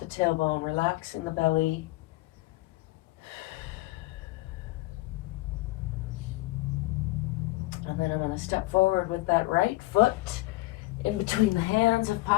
tailbone, relaxing the belly. And then I'm going to step forward with that right foot in between the hands if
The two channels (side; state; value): right; quieter; 19.7 dB